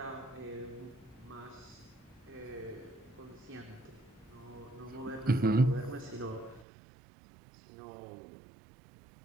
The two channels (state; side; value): drops out; left; at 6.7 s